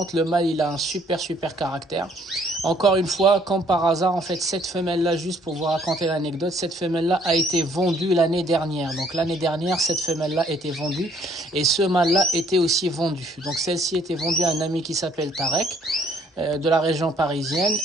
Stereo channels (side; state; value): both; normal; correlation 0.63